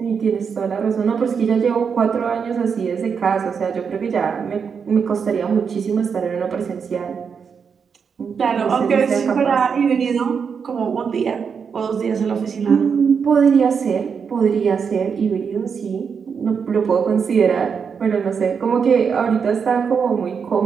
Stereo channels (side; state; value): left; quieter; 6.3 dB